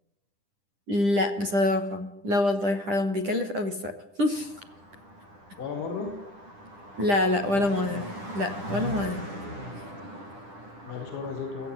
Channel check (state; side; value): late; left; 10 ms